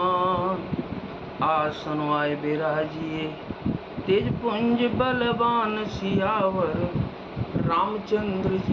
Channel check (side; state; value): both; identical; correlation 1.00